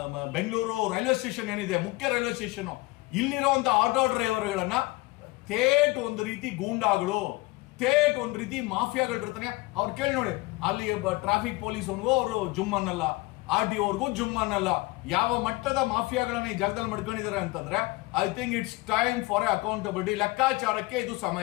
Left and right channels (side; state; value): right; quieter; 22.2 dB